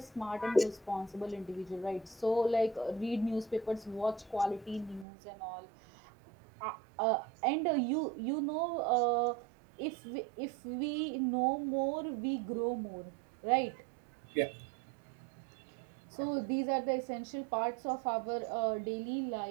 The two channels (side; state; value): left; drops out; at 5.1 s